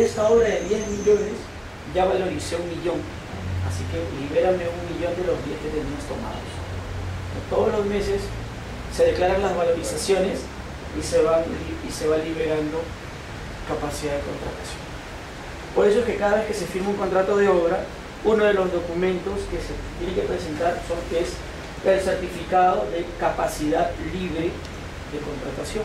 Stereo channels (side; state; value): both; identical; correlation 1.00